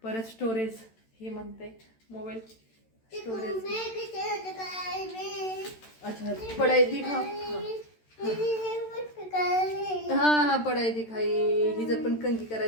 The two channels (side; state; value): right; late; 13 ms